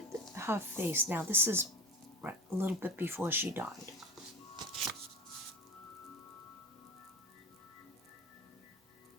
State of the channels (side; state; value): both; normal; correlation 0.31